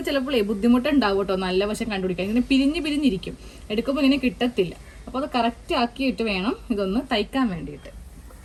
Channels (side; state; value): both; identical; correlation 1.00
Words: ചിലപ്പോൾ ബുദ്ധിമുട്ടുണ്ടാവും കേട്ടോ, നല്ല വശം കണ്ടുപിടിക്കാൻ. ഇങ്ങനെ പിരിഞ്ഞിരിക്കും, എടുക്കുമ്പോൾ ഇങ്ങനെ കിട്ടത്തില്ല. അപ്പോൾ അത് കറക്റ്റ് ആക്കിയിട്ട് വേണം ഇതൊന്ന് തയ്ക്കാൻ വേണ്ടിയിട്ട്.